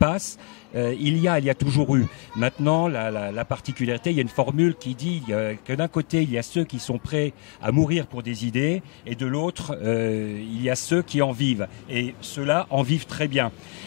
il y a toujours eu. Maintenant, la particularité, il y a une formule qui dit que d'un côté, il y a ceux qui sont prêts à mourir pour des idées, et de l'autre, il y a ceux qui en vivent. Et ceux-là en vivent très bien.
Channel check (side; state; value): right; quieter; 34.4 dB